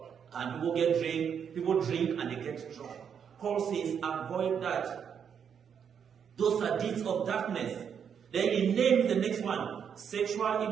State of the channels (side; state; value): left; quieter; 7.6 dB